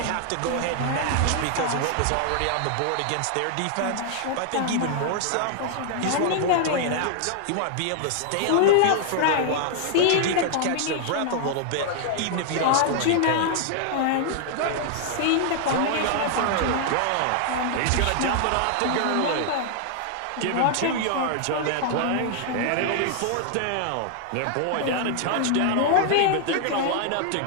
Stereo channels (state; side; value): different; both; correlation 0.00